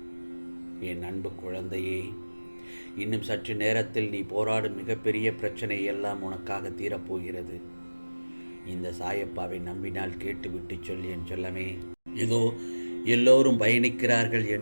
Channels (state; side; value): inverted; both; correlation -1.00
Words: என் அன்பு குழந்தையே, இன்னும் சற்று நேரத்தில் நீ போராடும் மிகப்பெரிய பிரச்சனை எல்லாம் உனக்காக தீரப்போகிறது. இந்த சாயப்பாவை நம்பினால் கேட்டுவிட்டு சொல் என் செல்லமே. இதோ எல்லோரும் பயணிக்கிறார்கள்